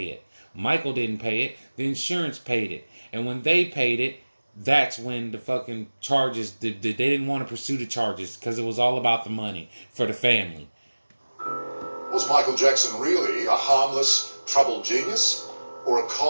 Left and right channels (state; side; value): inverted; both; correlation -1.00